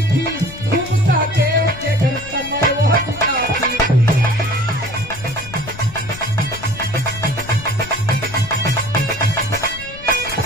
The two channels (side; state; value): left; noise; rumble, 16 dB below the sound